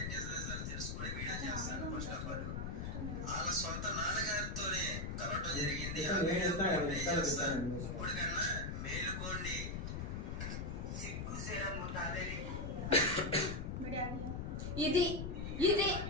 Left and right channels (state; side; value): noise; left; rumble, 3 dB below the sound